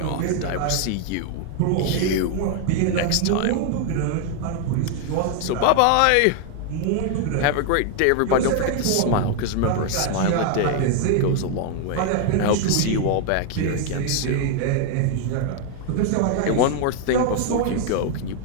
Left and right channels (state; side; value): different; both; correlation 0.00